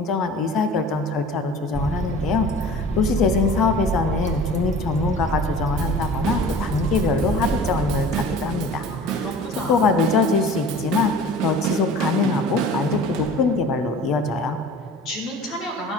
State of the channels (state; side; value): normal; both; correlation 0.42